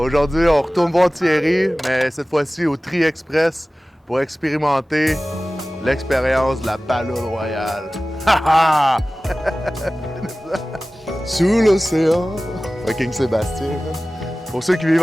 on retourne voir Thierry, mais cette fois-ci au Tri Express pour expérimenter l'expérience de la Palourde Royale. Ha ha! Sous l'océan. Fucking Sébastien. Pour ceux qui vivent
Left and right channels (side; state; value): both; normal; correlation 0.97